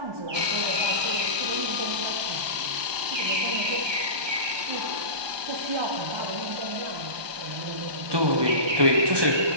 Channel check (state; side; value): late; left; 1.2 ms